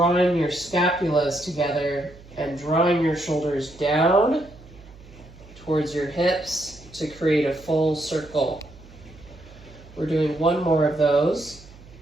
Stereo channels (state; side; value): noise; right; hum, 21 dB below the sound